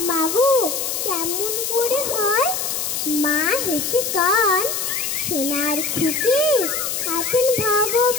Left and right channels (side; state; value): left; noise; hiss, 2 dB below the sound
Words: মাগো কেমন করে হয়? মা হেসে কান, সোনার খুকি আছেন